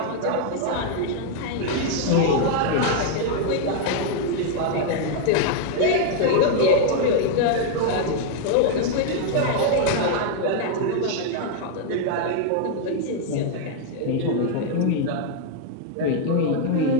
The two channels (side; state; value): both; different; correlation 0.00